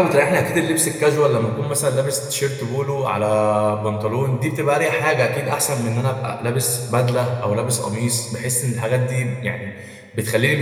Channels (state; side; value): identical; both; correlation 1.00